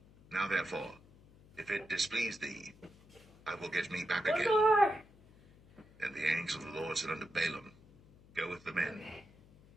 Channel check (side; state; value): left; noise; hum, 25 dB below the sound